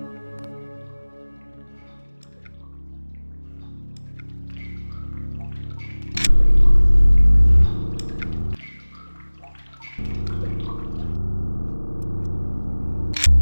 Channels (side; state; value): both; inverted; correlation -1.00